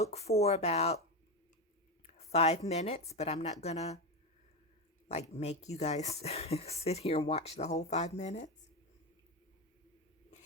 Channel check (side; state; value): both; normal; correlation 0.15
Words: for about 5 minutes, but I'm not going to like make you guys sit here and watch the whole 5 minutes.